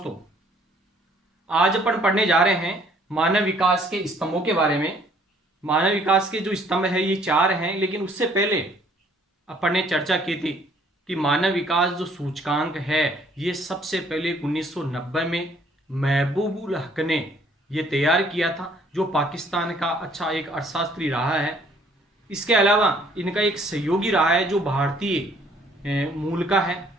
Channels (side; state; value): both; normal; correlation 0.61